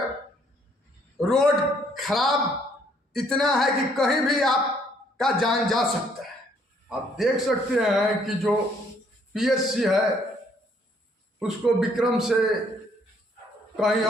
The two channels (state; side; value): normal; both; correlation 0.66